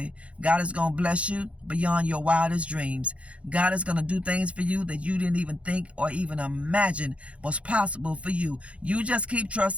God is going to bless you beyond your wildest dreams. God is going to do things for you that you didn't even think or even imagine was possible for you. You just keep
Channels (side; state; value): left; late; 0.062 ms